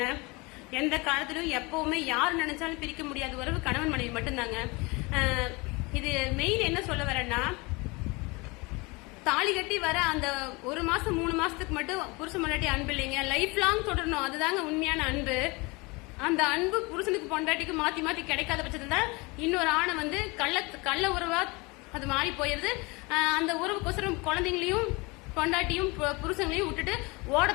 எந்த காலத்திலும் எப்பவுமே யார் நினைச்சாலும் பிரிக்க முடியாத உறவு கணவன் மனைவி மட்டும்தாங்க. இது மெயின் என்ன சொல்ல வரேன்னா, தாலி கட்டி வர அந்த 1 மாசம் 3 மாசத்துக்கு மட்டும் புருஷன் பொண்டாட்டி அன்பு இல்லைங்க, லைஃப் லாங் தொடரணும். அதுதாங்க உண்மையான அன்பு. அந்த அன்பு புருஷனுக்கு பொண்டாட்டிக்கு மாத்தி கிடைக்காத பட்சத்துல இன்னொரு ஆணை கள்ள உறவா அது மாறி போயிருது. அந்த உறவுக்கோசரம் குழந்தைங்களையும் பொண்டாட்டியும் புருஷங்களையும் விட்டுட்டு ஓட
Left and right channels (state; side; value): quieter; right; 26.1 dB